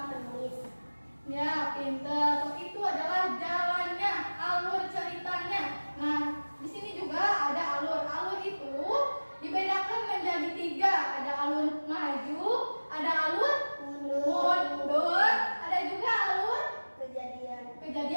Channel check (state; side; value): inverted; both; correlation -1.00